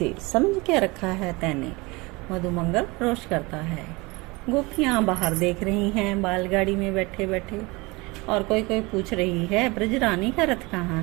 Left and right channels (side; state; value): left; quieter; 24.5 dB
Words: समझ के रखा है तैने, मधु मंगल रोष करता है। गोपियां बाहर देख रही हैं बैलगाड़ी में बैठे बैठे, और कोई कोई पूछ रही है ब्रजरानी का रथ कहाँ